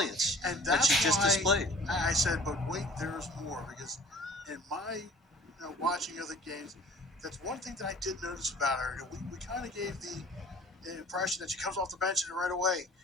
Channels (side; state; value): both; normal; correlation 0.48